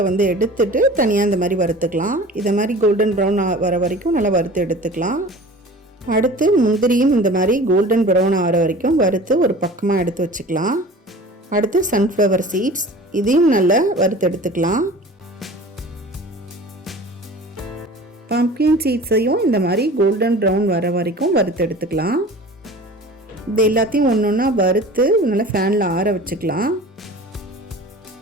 எடுத்துட்டு தனியாக இந்த மாதிரி வறுத்துக்கலாம். இதை மாதிரி கோல்டன் ப்ரௌன் வர வரைக்கும் நல்லா வறுத்து எடுத்துக்கலாம். அடுத்து முந்திரியும் இந்த மாதிரி கோல்டன் ப்ரௌன் ஆகிற வரைக்கும் வறுத்து ஒரு பக்கமாக எடுத்து வச்சுக்கலாம். அடுத்து சன்ஃப்ளவர் சீட்ஸ், இதையும் நல்லா வறுத்து எடுத்துக்கலாம். பம்கின் சீட்ஸையும் இந்த மாதிரி கோல்டன் ப்ரௌன் வர வரைக்கும் வறுத்து எடுத்துக்கலாம். இது எல்லாத்தையும் ஒன்று ஒன்றா வறுத்து நல்லா ஃபேனில் ஆற வச்சுக்கலாம்.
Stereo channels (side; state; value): both; normal; correlation 0.40